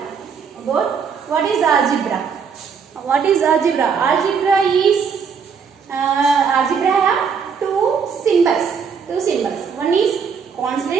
About what is algebra? What is algebra? Algebra is algebra have two symbols. One is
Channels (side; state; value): left; quieter; 6.2 dB